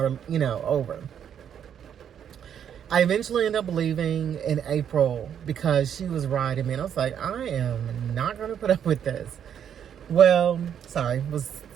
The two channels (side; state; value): left; quieter; 8.8 dB